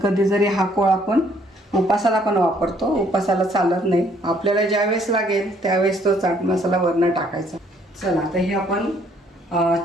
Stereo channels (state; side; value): normal; both; correlation 0.64